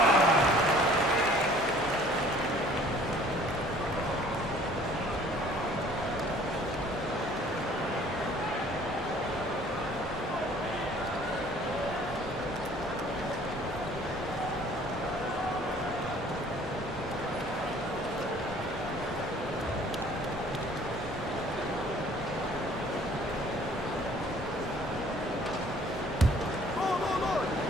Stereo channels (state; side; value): normal; both; correlation 0.54